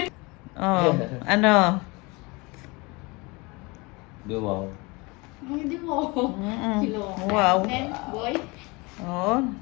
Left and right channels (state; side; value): quieter; right; 26.2 dB